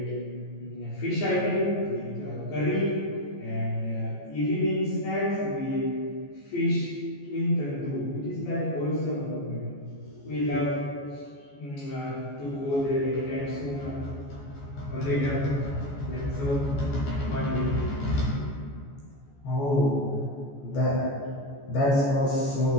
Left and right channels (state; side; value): late; right; 14 ms